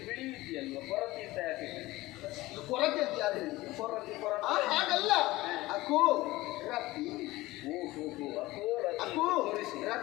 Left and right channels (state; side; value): quieter; right; 18.8 dB